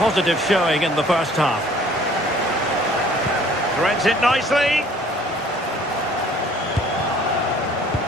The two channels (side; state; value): both; normal; correlation 0.55